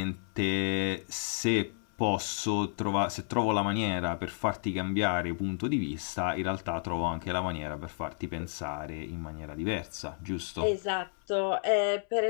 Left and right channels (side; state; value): right; silent; 57 dB below the other